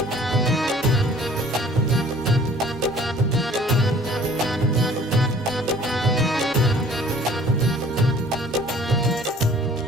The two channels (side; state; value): both; normal; correlation 0.52